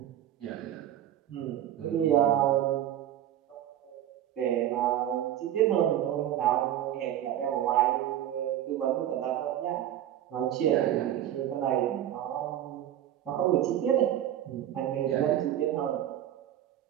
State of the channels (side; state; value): left; quieter; 11.6 dB